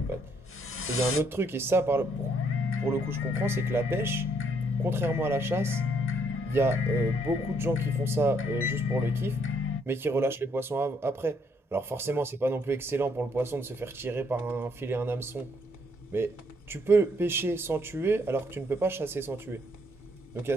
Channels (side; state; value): both; normal; correlation 0.70